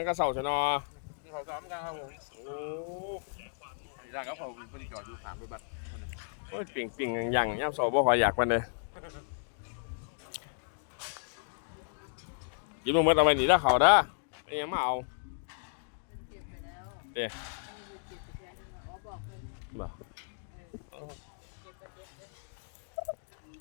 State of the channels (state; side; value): silent; right; digital silence